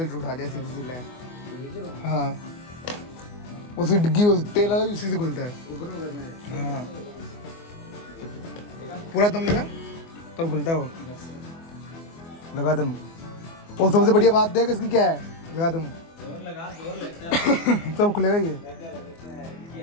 उठा जाए सीधी लाए। हाँ उसकी डिग्गी तेल वाला भी उसी से खुलता है। हाँ पूरा दम लगा तब खुलता है वो, लगा दम। और सबसे बढ़िया बात देख इसकी क्या है, लगा दम तब खुलेगा ये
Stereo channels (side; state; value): right; late; 24 ms